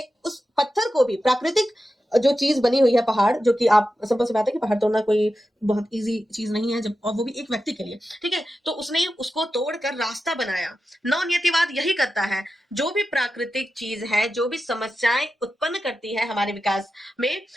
उस पत्थर को भी, प्राकृतिक जो चीज बनी हुई है पहाड़, जो कि आप सिंपल सी बात है कि पहाड़ तोड़ना कोई बहुत इजी चीज नहीं है, जब, और वो भी एक व्यक्ति के लिए। ठीक है, तो उसने उसको तोड़कर रास्ता बनाया। नवनियतिवाद यही करता है, जो भी प्राकृतिक चीज है, जो भी समस्याएं उत्पन्न करती है हमारे विकास में,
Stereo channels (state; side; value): normal; both; correlation 0.91